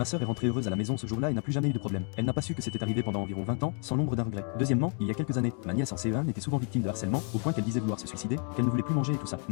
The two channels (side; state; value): right; quieter; 39.0 dB